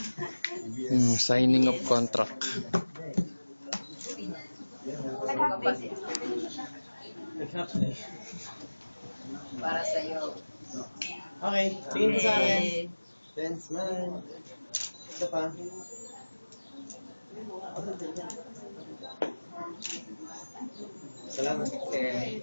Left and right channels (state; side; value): inverted; both; correlation -1.00